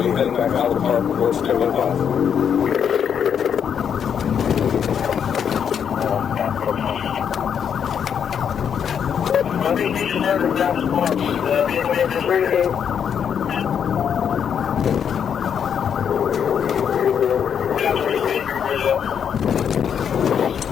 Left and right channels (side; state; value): right; quieter; 7.9 dB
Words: to be heading back out of the park before it's 2:05.